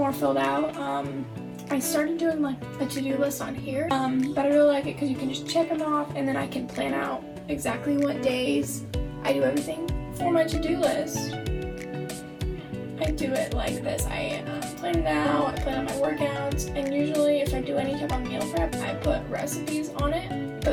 filled out. I started doing like a to-do list on here, but I really like it because you can just check them off and then I can plan out exactly what days I do everything for my to-do list. I do it like this. I plan it out, I plan out my workouts, and usually if I do any type of meal prep, I put recipes on it. But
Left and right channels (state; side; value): identical; both; correlation 1.00